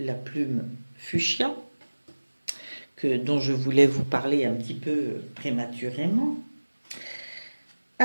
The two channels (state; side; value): inverted; both; correlation -1.00